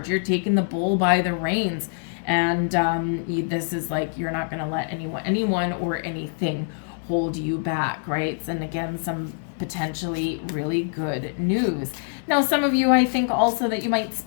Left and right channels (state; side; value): silent; right; digital silence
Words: You're taking the bull by the reins. And this is like, you're not going to let anyone or anything hold you back, right? And again, some potentially really good news. Now, some of you, I think also that you might